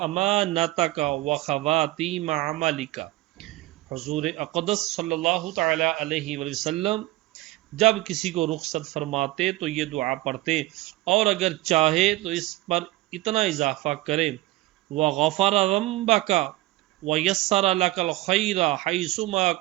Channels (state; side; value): quieter; left; 18.2 dB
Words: و خواتیم عملک۔ حضور اقدس صلی اللہ تعالی علیہ وسلم جب کسی کو رخصت فرماتے تو یہ دعا پڑھتے، اور اگر چاہے تو اس پر اتنا اضافہ کرے، وغفر ذنبک ویسر لک الخیر حیثما